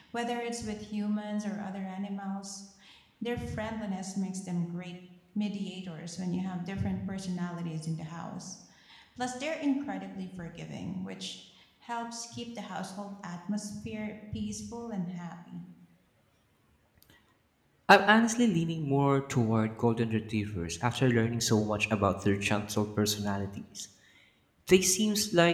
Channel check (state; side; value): identical; both; correlation 1.00